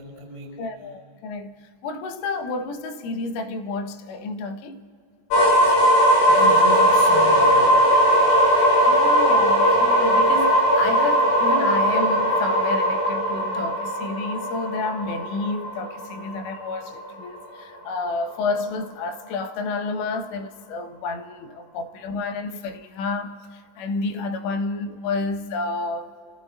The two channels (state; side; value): late; right; 20 ms